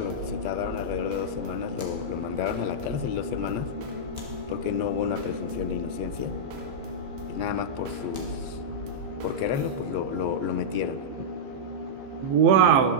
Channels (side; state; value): left; late; 15 ms